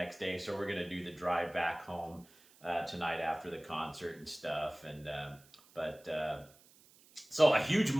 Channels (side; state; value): right; noise; hiss, 26 dB below the sound